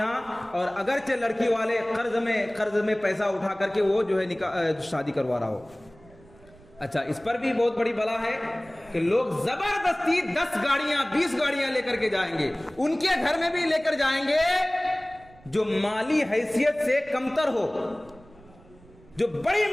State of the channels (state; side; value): noise; right; rumble, 25 dB below the sound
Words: اور اگرچہ لڑکی والے قرض میں پیسہ اٹھا کر کے وہ جو ہے نکاح شادی کروا رہا ہو۔ اچھا، اس پر بھی بہت بڑی بلا ہے کہ لوگ زبردستی 10 گاڑیاں 20 گاڑیاں لے کر کے جائیں گے، ان کے گھر میں بھی لے کر جائیں گے جو مالی حیثیت سے کمتر ہو، جو بڑی